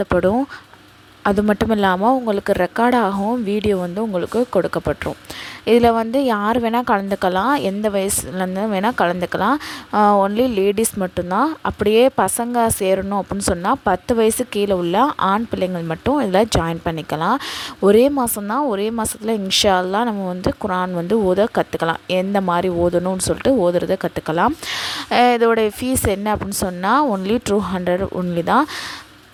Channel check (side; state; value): both; identical; correlation 1.00